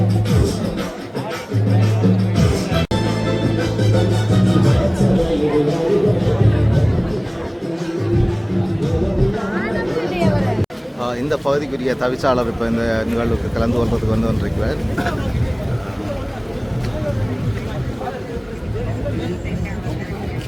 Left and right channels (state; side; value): identical; both; correlation 1.00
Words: இந்த பகுதிக்குரிய தவிசாளர் இப்போ இந்த நிகழ்வுக்கு கலந்து கொள்வதற்கு வந்து கொண்டிருக்கிறார்.